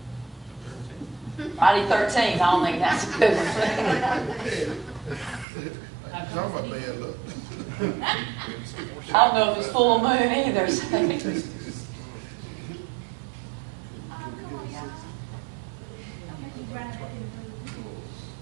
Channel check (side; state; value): left; drops out; at 5.5 s